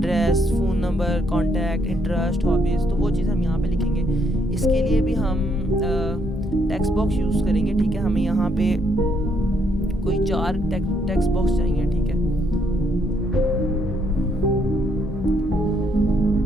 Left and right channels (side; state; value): both; normal; correlation 0.72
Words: phone number, contact, interest, hobbies, तो वो चीज़ हम यहाँ पे लिखेंगे। इसके लिए भी हम टेक्स्ट बॉक्स यूज़ करेंगे, ठीक है। हमें यहाँ पे कोई 4 टेक्स्ट बॉक्स चाहिए, ठीक है।